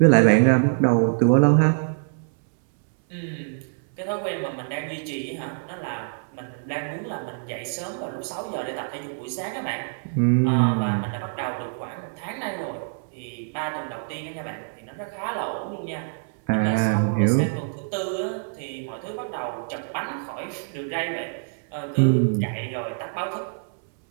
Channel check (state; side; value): silent; left; 62 dB below the other